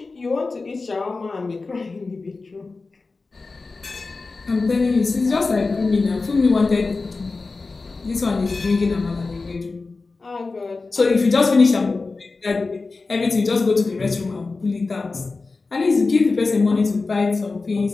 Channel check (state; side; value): quieter; right; 3.9 dB